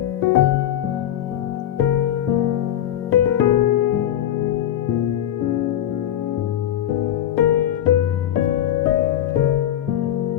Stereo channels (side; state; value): right; quieter; 11.3 dB